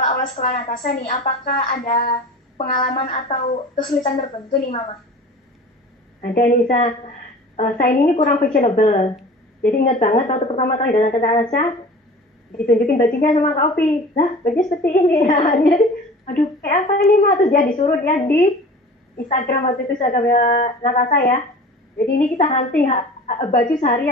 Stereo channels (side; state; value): both; normal; correlation 0.41